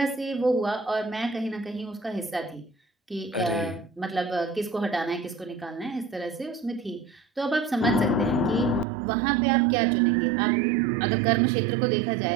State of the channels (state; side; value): drops out; left; at 8.8 s